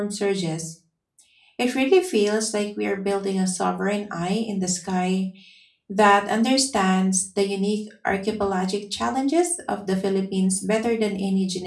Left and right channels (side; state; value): both; identical; correlation 1.00